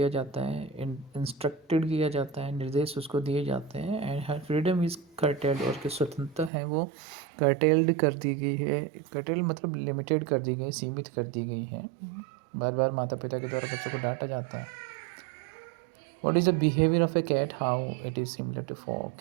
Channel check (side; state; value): left; drops out; at 6.5 s